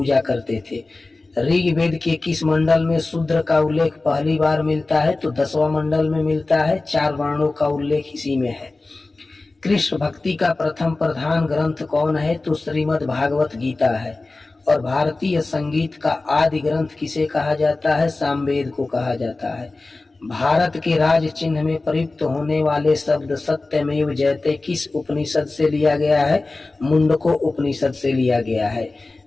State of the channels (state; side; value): quieter; right; 3.3 dB